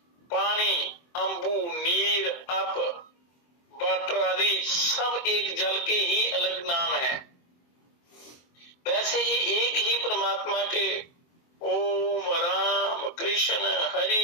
पानी, अंबु, नीर, अप, वाटर आदि सब एक जल के ही अलग नाम है, वैसे ही एक ही परमात्मा के ओम राम कृष्ण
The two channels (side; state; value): right; late; 23 ms